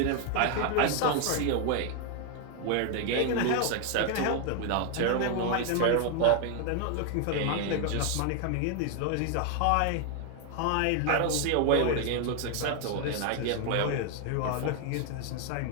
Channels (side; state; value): both; different; correlation 0.01